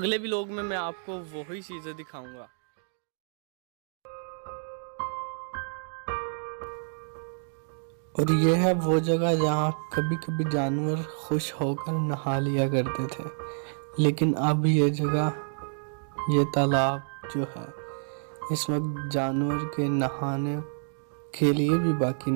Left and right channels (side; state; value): left; silent; digital silence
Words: व्लॉग में मैं आपको वही चीज़ें दिखाऊँगा। और ये है वो जगह जहाँ कभी कभी जानवर खुश होकर नहा लिया करते थे। लेकिन अब ये जगह, ये तालाब जो है, इस वक्त जानवर के नहाने के लिए भी बाकी